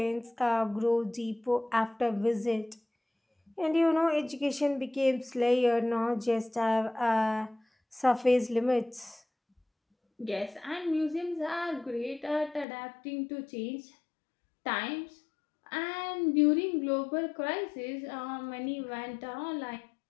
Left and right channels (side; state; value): right; drops out; at 12.7 s